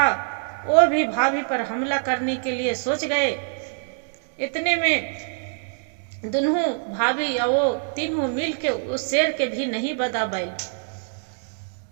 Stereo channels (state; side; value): silent; left; digital silence